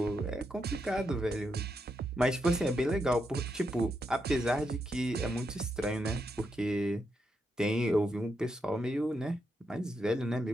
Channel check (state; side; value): normal; both; correlation 0.82